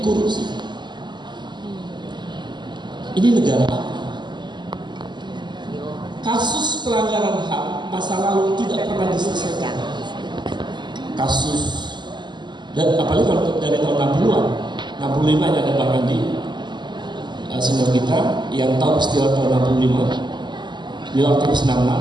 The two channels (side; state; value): left; late; 0.21 ms